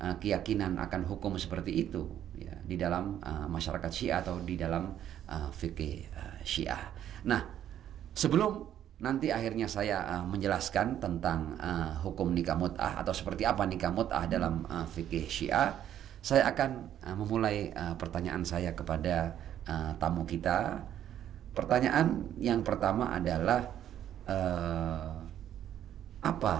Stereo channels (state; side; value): quieter; left; 10.8 dB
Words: keyakinan akan hukum seperti itu ya, di dalam masyarakat Syiah atau di dalam fikih Syiah. Nah, sebelum nanti akhirnya saya menjelaskan tentang hukum nikah mut'ah atau seperti apa nikah mut'ah dalam fikih Syiah, saya akan memulai pertanyaan saya kepada tamu kita. Pertanyaan yang pertama adalah apa